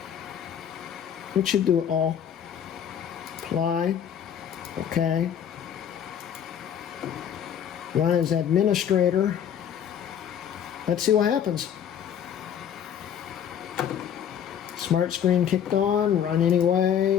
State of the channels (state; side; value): quieter; right; 8.9 dB